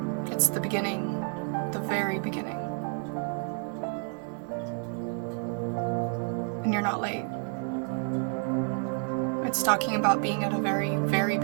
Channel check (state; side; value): quieter; left; 39.3 dB